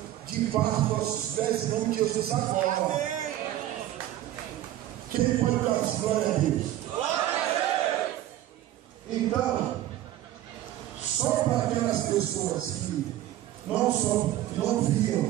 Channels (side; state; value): left; quieter; 13.4 dB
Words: debaixo dos nossos pés, em nome de Jesus agora. Quem pode dar glória a Deus? Então, só para aquelas pessoas que não